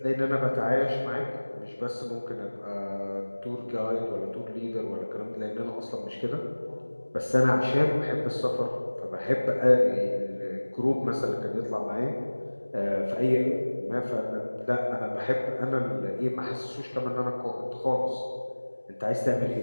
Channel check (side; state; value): both; inverted; correlation -1.00